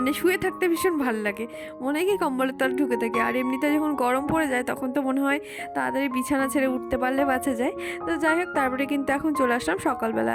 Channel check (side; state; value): both; identical; correlation 1.00